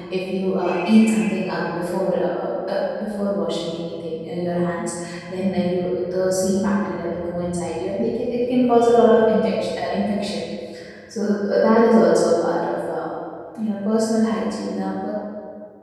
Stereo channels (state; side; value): identical; both; correlation 1.00